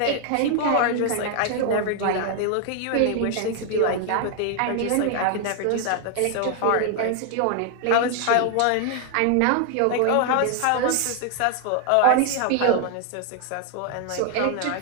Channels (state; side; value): different; both; correlation 0.00